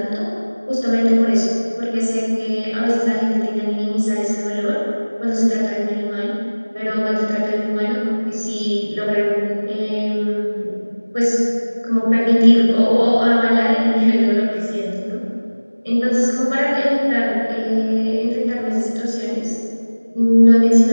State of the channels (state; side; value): inverted; both; correlation -1.00